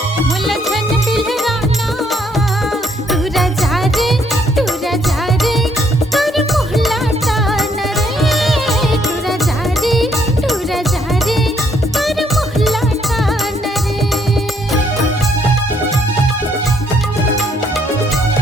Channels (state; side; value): normal; both; correlation 0.69